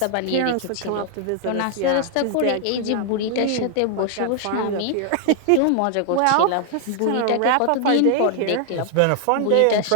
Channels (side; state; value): both; different; correlation 0.00